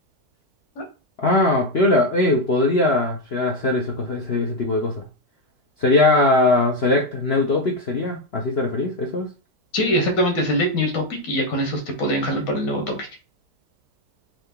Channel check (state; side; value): normal; both; correlation 0.06